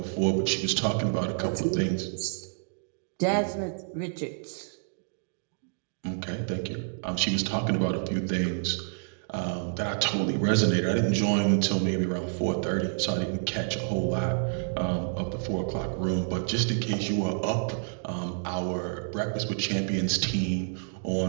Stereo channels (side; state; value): left; silent; digital silence